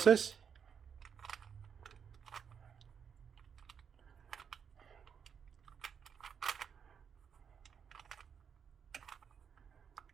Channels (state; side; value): quieter; left; 7.1 dB